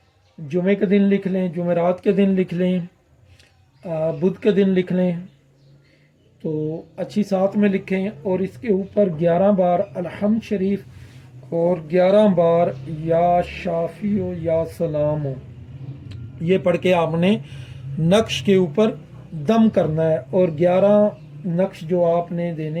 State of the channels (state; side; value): identical; both; correlation 1.00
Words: जुमे के दिन लिख लें, जुमेरात के दिन लिख लें, बुध के दिन लिख लें, तो अच्छी साथ में लिखें। और इसके ऊपर 11 बार अलहम्द शरीफ और 11 बार या शाफियो या सलामो ये पढ़ के आपने नक्श के ऊपर दम करना है। और 11 नक्श जो आपने